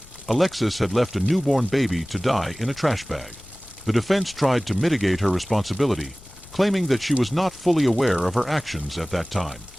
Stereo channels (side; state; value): left; noise; rumble, 21 dB below the sound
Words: Alexis had left a newborn baby to die in a trash bag. The defense tried to mitigate her responsibility, claiming that she was not fully aware of her actions at that time.